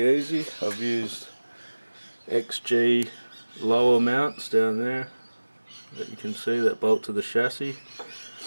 easy. I've used XG lower mounts down there that you can see that bolt to the chassis,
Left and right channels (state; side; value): inverted; both; correlation -1.00